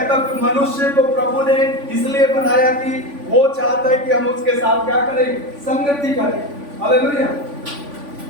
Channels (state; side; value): late; left; 3.5 ms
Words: हूं कि मनुष्य को प्रभु ने इसलिए बनाया कि वो चाहता है कि हम उसके साथ क्या करें, संगति करें। हालेलुया।